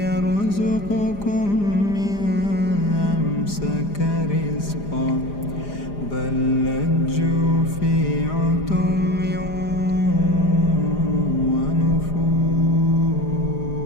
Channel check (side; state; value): right; late; 4.9 ms